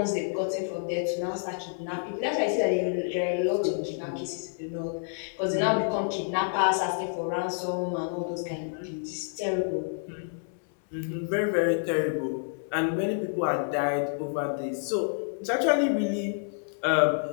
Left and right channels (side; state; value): right; silent; 59 dB below the other